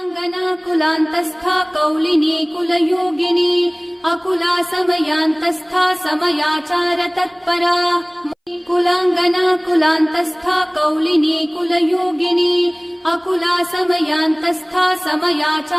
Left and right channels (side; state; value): both; identical; correlation 1.00